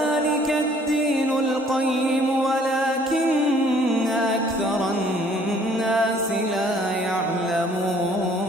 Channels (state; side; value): normal; both; correlation 0.58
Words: الدين القيم ولكن أكثر الناس لا يعلمون.